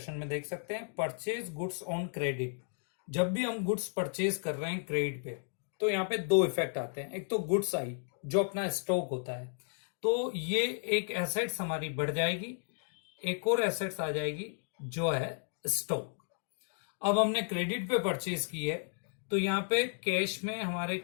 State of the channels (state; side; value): silent; right; 55 dB below the other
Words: में देख सकते हैं। परचेज गुड्स ऑन क्रेडिट, जब भी हम गुड्स परचेज कर रहे हैं क्रेडिट पे तो यहाँ पे दो इफेक्ट आते हैं। एक तो गुड्स आई जो अपना स्टॉक होता है, तो ये एक एसेट्स हमारी बढ़ जाएगी, एक और एसेट्स आ जाएगी जो है स्टॉक। अब हमने क्रेडिट पे परचेज की है तो यहाँ पे कैश में हमारे